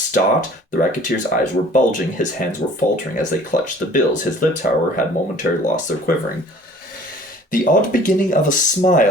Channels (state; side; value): normal; both; correlation 0.50